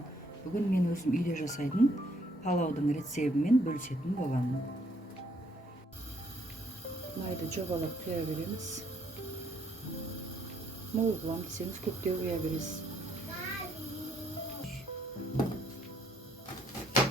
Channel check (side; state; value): both; normal; correlation 0.68